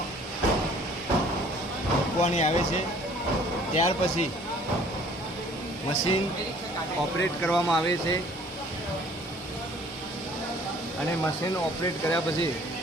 મૂકવાની આવે છે, ત્યાર પછી મશીન ઓપરેટ કરવામાં આવે છે અને મશીન ઓપરેટ કર્યા પછી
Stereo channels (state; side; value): normal; both; correlation 0.55